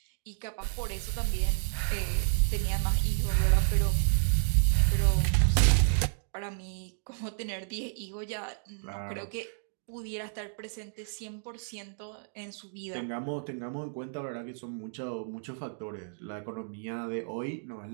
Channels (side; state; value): left; silent; digital silence